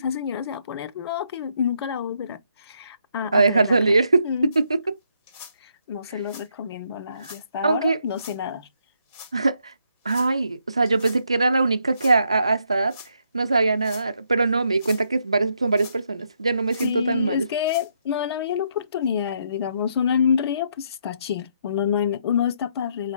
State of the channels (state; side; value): inverted; both; correlation -0.75